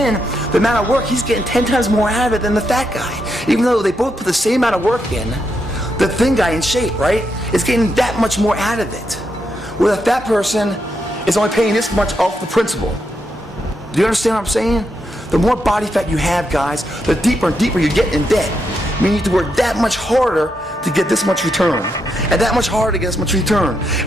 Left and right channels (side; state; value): both; normal; correlation 0.82